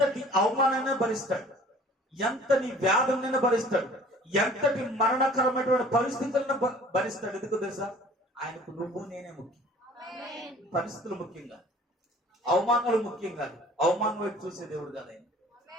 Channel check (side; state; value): both; normal; correlation 0.49